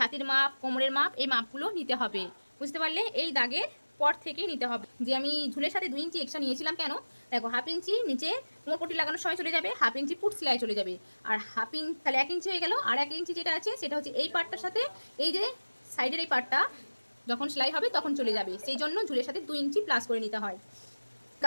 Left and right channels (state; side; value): inverted; both; correlation -1.00